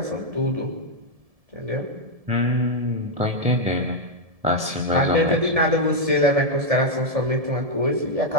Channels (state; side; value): late; left; 1.7 ms